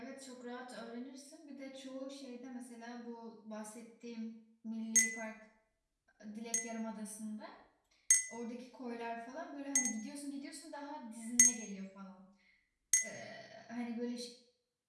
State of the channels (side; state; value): both; identical; correlation 1.00